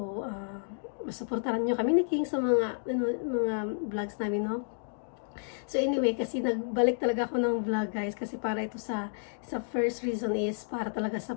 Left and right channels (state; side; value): silent; right; digital silence